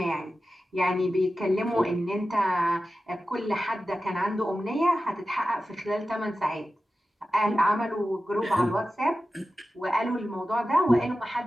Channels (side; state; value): both; normal; correlation 0.93